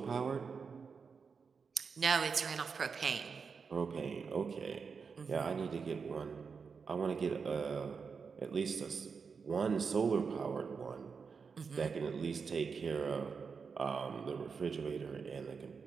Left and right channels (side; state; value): left; quieter; 5.5 dB